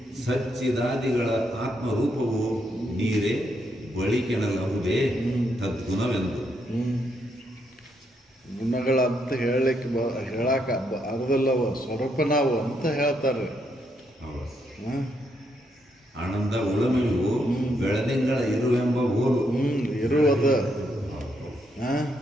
ಸಚ್ಚಿದಾದಿಗಳ ಆತ್ಮರೂಪವು ನೀರೇ ಬಳಿಕೆನಲ್ಲಹುದೇ ತದ್ಗುಣವೆಂದು. ಗುಣಗಳಂತ ಹೇಳಕ ಅರ್ಧಲ್ಲವ, ಸ್ವರೂಪನಾವು ಅಂತ ಹೇಳ್ತಾರೆ. ಆನಂದ, ಉಳಮಿವು, ಬೆಳದಿಂಗಳ ಇರುವೆಂಬ ಓಲು. ಇರುವದ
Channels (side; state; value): both; normal; correlation 0.77